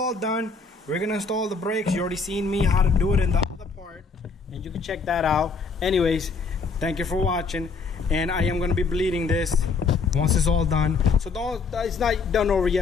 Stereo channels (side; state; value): right; quieter; 4.7 dB